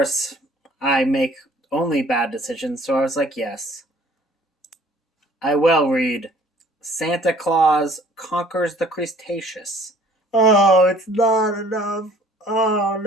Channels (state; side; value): normal; both; correlation 0.55